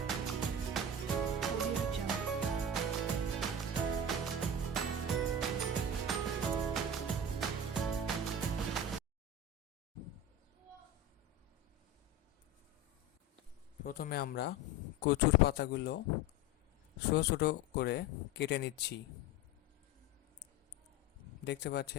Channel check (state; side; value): normal; both; correlation 0.28